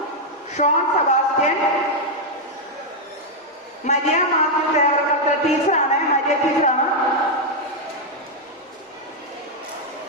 Sean Sebastian, Maria Mathew ടീച്ചറാണ്, മരിയ ടീച്ചറാണ്.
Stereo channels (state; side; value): normal; both; correlation -0.01